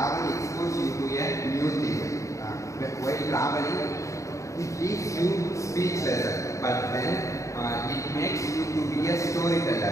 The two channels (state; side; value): late; right; 0.15 ms